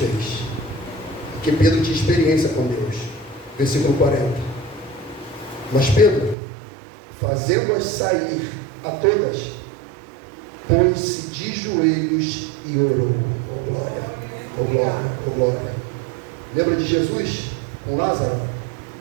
Porque Pedro tinha experiência com Deus. Versículo 40. Mas Pedro, fazendo-as sair a todas, pôs-se de joelhos e orou. Oh glória, oh glória, oh glória. Lembra de Jesus com Lázaro?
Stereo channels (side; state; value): left; drops out; at 6.4 s